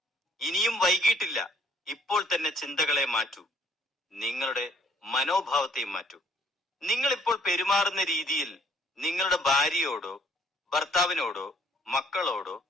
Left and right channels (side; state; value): both; normal; correlation 0.61